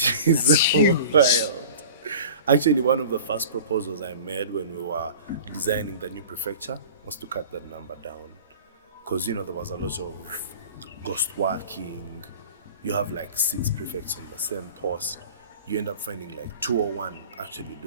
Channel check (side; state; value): both; inverted; correlation -0.40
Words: is so wild. Actually, one of the first proposals I made when we were designing the new prefecture was to cut that number down. Because, there was a lot of ghost working. You have like 6 prefects on the same post. You end up finding like 2 or 1 actually